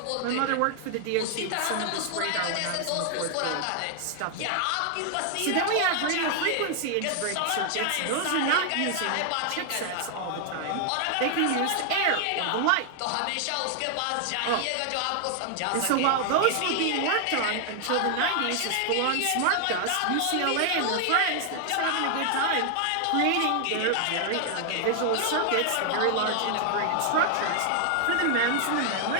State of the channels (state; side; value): different; both; correlation 0.00